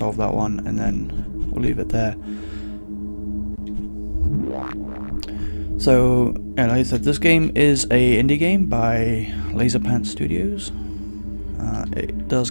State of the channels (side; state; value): both; inverted; correlation -1.00